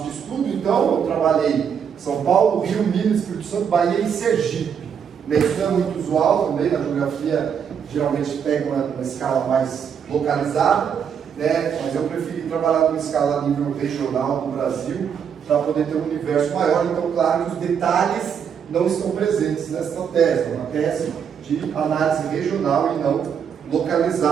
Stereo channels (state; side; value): quieter; left; 7.5 dB